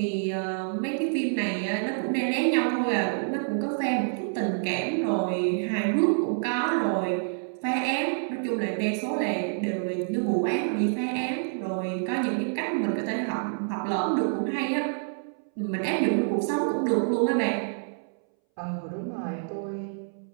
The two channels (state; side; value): silent; left; 60 dB below the other